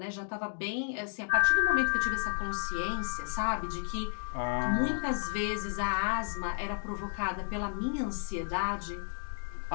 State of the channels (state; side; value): silent; right; 56 dB below the other